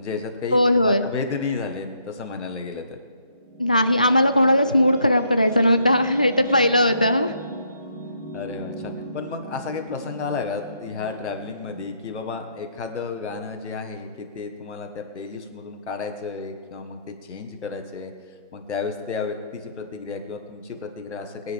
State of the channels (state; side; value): inverted; both; correlation -0.70